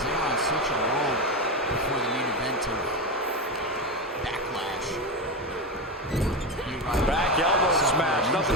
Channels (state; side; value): normal; both; correlation 0.16